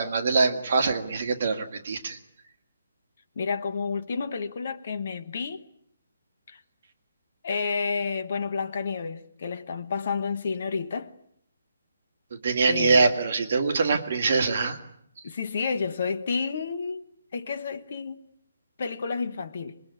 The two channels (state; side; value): inverted; both; correlation -0.79